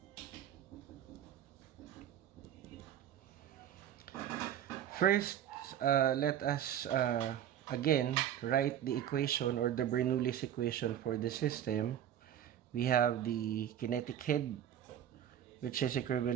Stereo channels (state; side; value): quieter; left; 10.4 dB